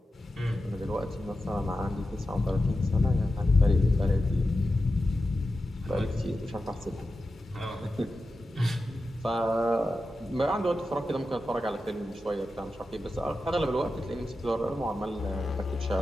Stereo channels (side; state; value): both; normal; correlation 0.91